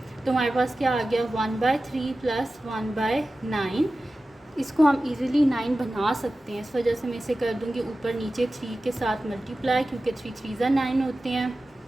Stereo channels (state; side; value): normal; both; correlation 0.95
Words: तो हमारे पास क्या आ गया 1/3 प्लस 1/9। इसको हम इजीली 9 बना सकते हैं, इस वजह से मैं इसे कर दूँगी ऊपर नीचे 3 के साथ मल्टीप्लाई, क्योंकि 3 3 9 होते हैं।